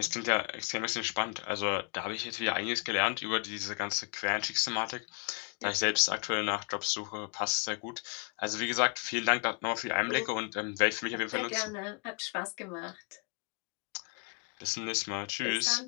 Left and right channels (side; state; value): right; quieter; 34.3 dB